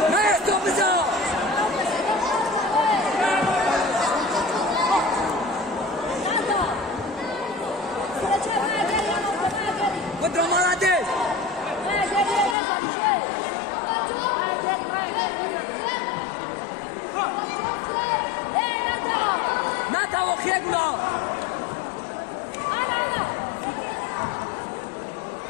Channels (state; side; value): drops out; right; at 12.6 s